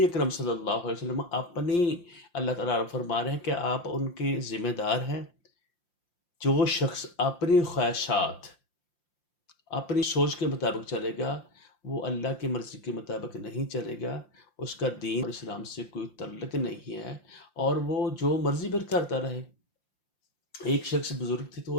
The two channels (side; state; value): right; late; 5.8 ms